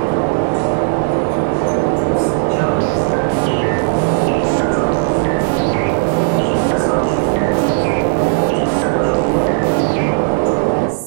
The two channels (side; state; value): left; silent; digital silence